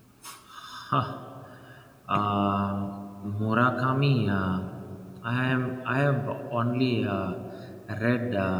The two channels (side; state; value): both; identical; correlation 1.00